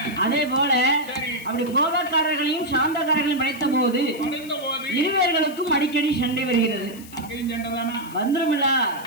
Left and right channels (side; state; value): left; noise; hiss, 19 dB below the sound